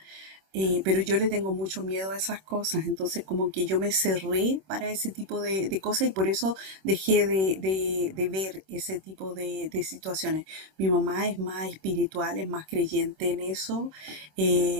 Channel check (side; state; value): left; late; 26 ms